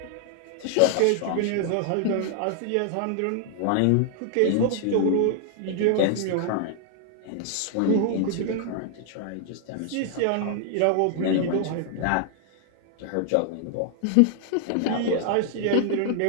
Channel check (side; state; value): both; different; correlation 0.00